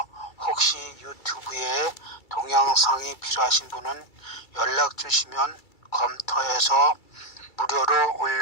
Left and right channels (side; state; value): right; late; 2.3 ms